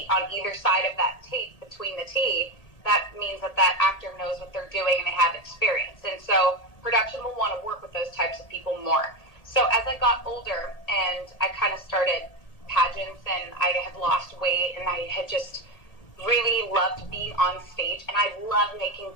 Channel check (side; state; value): right; late; 1.8 ms